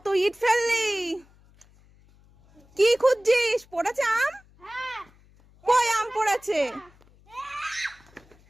ইট ফেললি! কি খুঁজছিস? পড়েছে আম? কই আম পড়েছে?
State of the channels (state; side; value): noise; left; hum, 29 dB below the sound